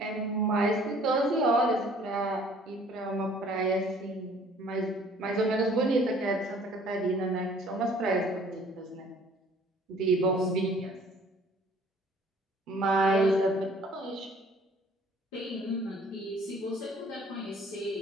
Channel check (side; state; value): both; normal; correlation 0.55